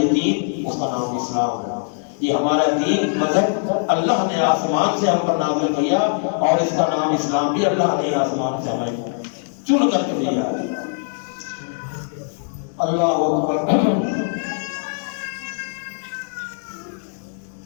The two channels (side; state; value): right; silent; digital silence